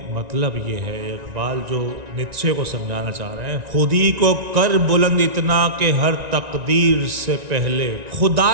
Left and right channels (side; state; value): left; late; 1.9 ms